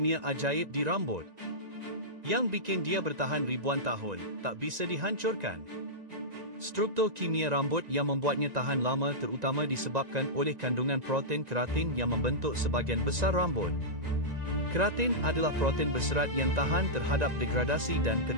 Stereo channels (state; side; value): late; left; 1.9 ms